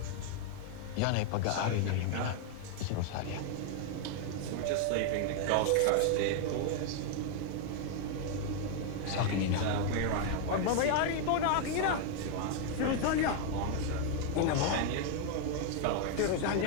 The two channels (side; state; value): both; different; correlation 0.00